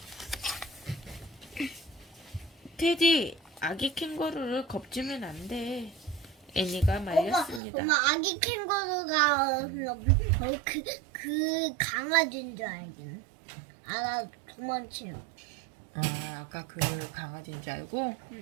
테디, 아기 캥거루를 겁주면 안 돼. 애니가 말렸습니다. 엄마 아기 캥거루가 그 강아지인 줄 알긴. 나 도망치요. 아, 아까 그 강아지인 줄 알고?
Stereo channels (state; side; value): drops out; left; at 7.6 s